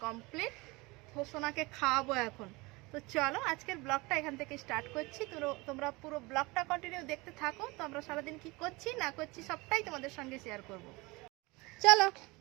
কমপ্লিট, তো সোনাকে খাওয়াবো এখন। তো চলো আজকের ব্লগটা এখান থেকে স্টার্ট করছি। তো তোমরা পুরো ব্লগটা কন্টিনিউ দেখতে থাকো। তো আমরা সারাদিন কি করছি না করছি সবটাই তোমাদের সঙ্গে শেয়ার করব। চলো।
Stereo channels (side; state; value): left; quieter; 23.9 dB